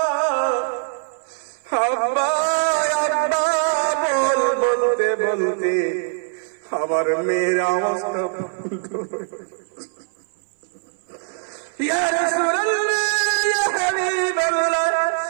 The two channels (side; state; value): left; silent; 57 dB below the other